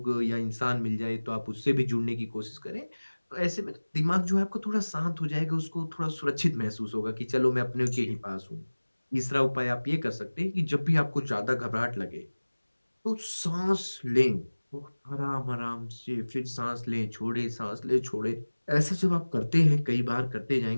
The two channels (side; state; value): both; inverted; correlation -1.00